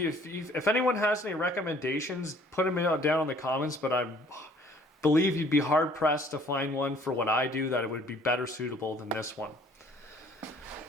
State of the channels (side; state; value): both; normal; correlation 0.57